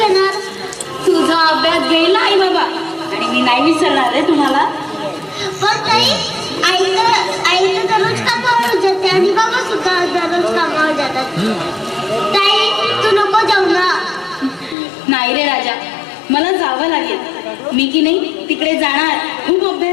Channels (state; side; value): drops out; right; at 14.8 s